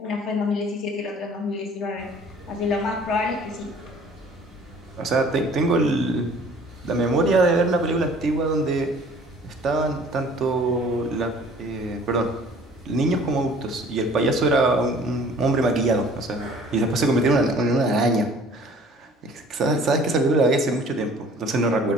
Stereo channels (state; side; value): normal; both; correlation 0.52